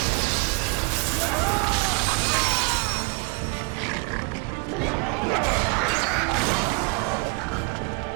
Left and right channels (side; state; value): left; quieter; 31.5 dB